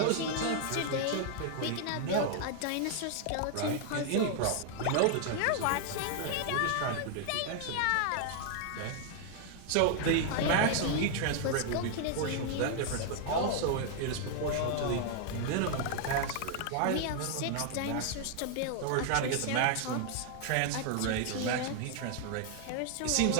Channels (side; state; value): both; different; correlation 0.00